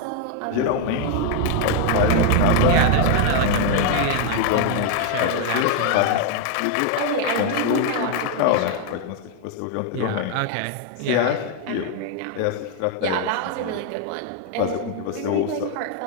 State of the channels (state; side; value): different; both; correlation 0.01